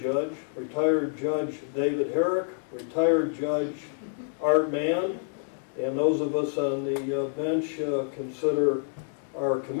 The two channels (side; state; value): right; silent; digital silence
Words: David Herrick, retired Judge Art Mann, and those of us on the bench consider our